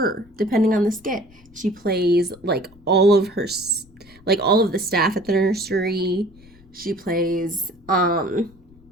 depending on the skit. She plays like all of the staff at the nursery. She plays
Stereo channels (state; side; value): noise; left; rumble, 27 dB below the sound